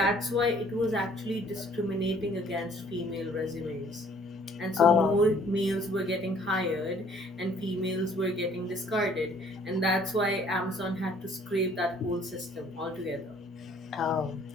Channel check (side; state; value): both; normal; correlation 0.58